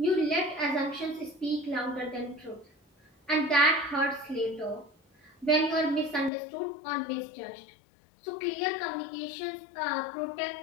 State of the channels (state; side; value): drops out; right; at 6.3 s